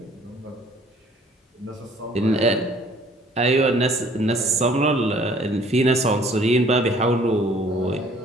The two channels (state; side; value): normal; both; correlation 0.56